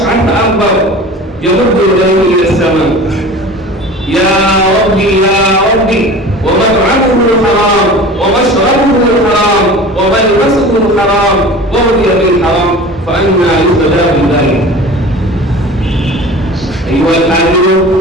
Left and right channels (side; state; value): both; normal; correlation 0.39